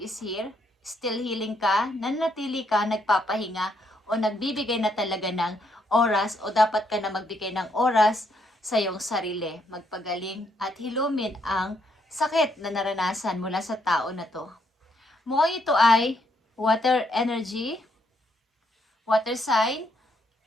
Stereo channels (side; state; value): both; normal; correlation 0.74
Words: here. Still healing ka, nanatili ka, nagpapahinga o nagbibigay na talaga ng oras o dapat ka na magbigay ng oras sa iyong sarili, magpagaling at hilumin ang sakit na naranasan mula sa tao na to. Mukhang ito ay water energy, water sign,